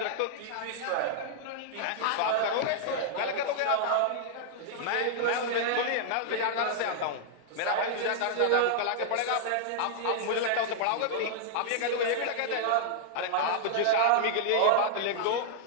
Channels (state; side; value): different; both; correlation -0.01